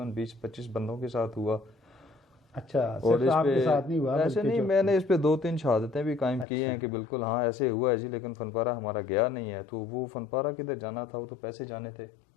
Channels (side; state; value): right; drops out; at 6.5 s